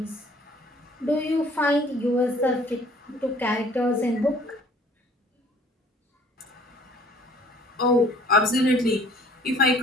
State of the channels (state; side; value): normal; both; correlation 0.55